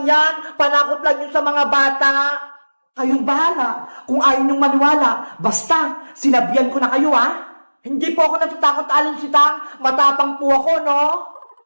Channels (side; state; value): both; inverted; correlation -1.00